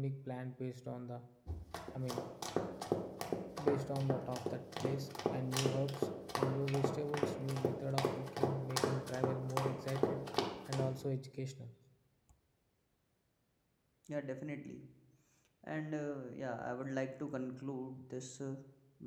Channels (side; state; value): both; identical; correlation 1.00